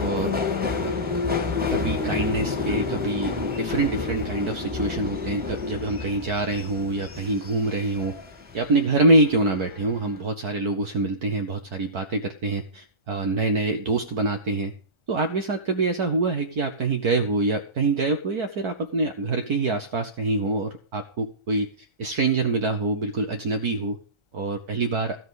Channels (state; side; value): late; left; 1.4 ms